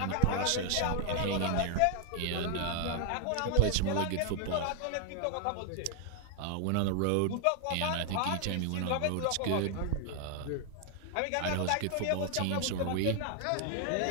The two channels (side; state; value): both; different; correlation 0.00